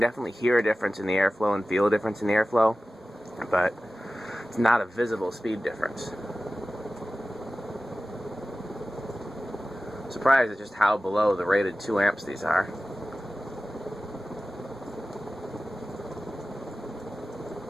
hear a difference in the airflow and feel a difference in the airflow, but it's not a visible speed difference. Surprised at just how below the rated 2 amps these are.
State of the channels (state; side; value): normal; both; correlation 0.96